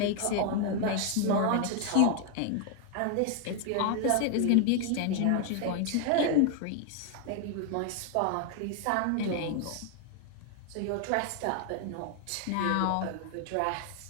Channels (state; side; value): different; both; correlation 0.00